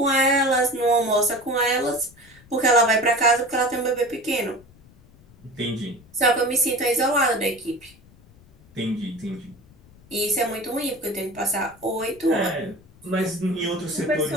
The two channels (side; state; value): left; noise; rumble, 26 dB below the sound